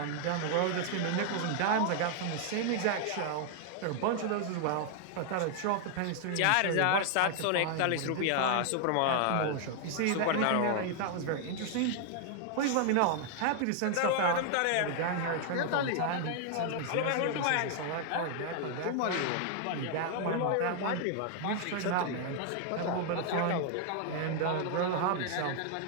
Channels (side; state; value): both; different; correlation 0.00